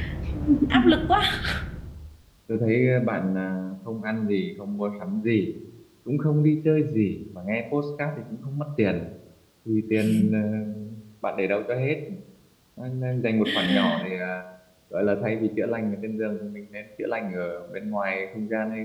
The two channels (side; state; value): both; identical; correlation 1.00